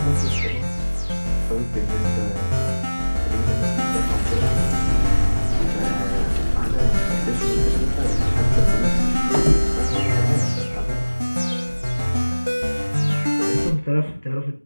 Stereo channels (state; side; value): inverted; both; correlation -1.00